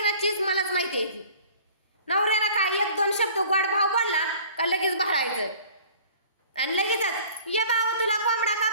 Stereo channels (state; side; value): inverted; both; correlation -0.49